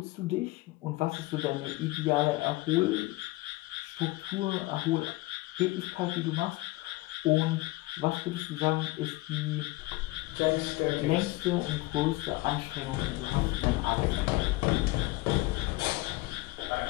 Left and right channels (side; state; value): right; quieter; 20.8 dB